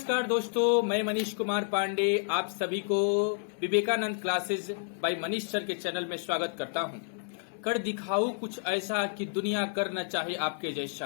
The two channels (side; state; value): right; silent; 58 dB below the other